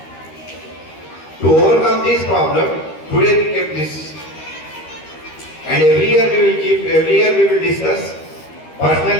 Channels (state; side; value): late; right; 13 ms